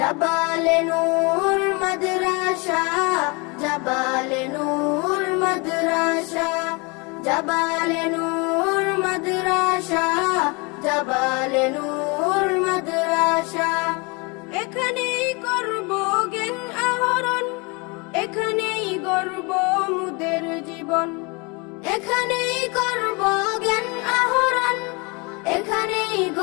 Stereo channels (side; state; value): right; quieter; 29.1 dB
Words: নূর মাদ্রাসা, জাবালে নূর মাদ্রাসা, জাবালে নূর মাদ্রাসা, জাবালে নূর মাদ্রাসা। এখানেই করব জ্ঞান আহরণ, এখানেই গড়ব মুদের জীবন। এখানেই করব জ্ঞান আহরণ, এখানেই